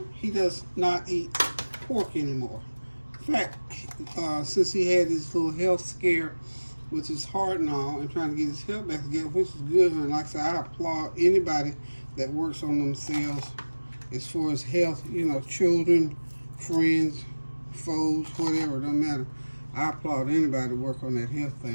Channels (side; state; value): both; inverted; correlation -1.00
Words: He does not eat pork anymore. In fact, since he had this little health scare with his heart and all, and trying to get his health back together, which is good. And like I said, I applaud anybody that works on themselves as far as health, you know, children, friends, foes, whatever, it don't matter. I applaud anybody to work on that health